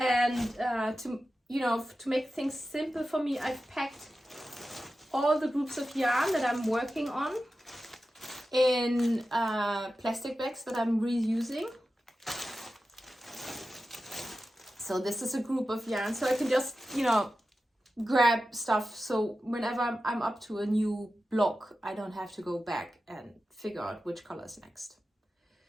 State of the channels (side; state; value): both; normal; correlation 0.93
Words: to make things simple for me, I've packed all the groups of yarn that I'm working on in plastic bags that I'm reusing. So this is a group of yarn, so I can just, grab stuff. So whenever I'm up to a new block, I don't have to go back and figure out which color is next